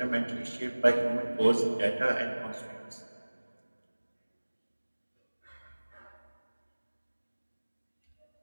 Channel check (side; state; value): both; inverted; correlation -1.00